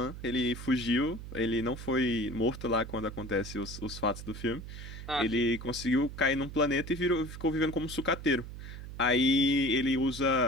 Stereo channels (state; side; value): noise; right; hum, 11 dB below the sound